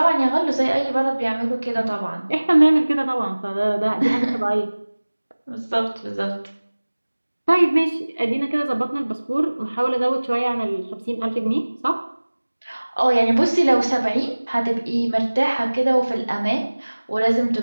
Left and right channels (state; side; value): inverted; both; correlation -1.00